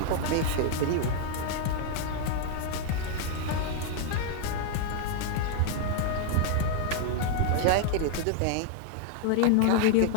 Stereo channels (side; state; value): both; different; correlation 0.00